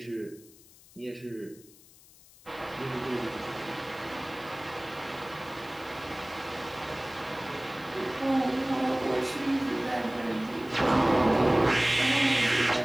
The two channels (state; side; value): noise; left; hiss, 24 dB below the sound